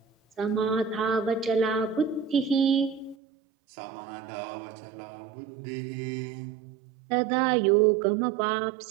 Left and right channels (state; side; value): drops out; left; at 3.2 s